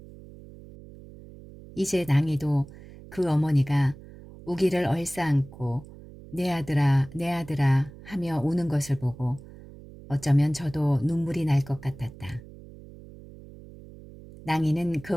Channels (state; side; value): noise; right; hum, 18 dB below the sound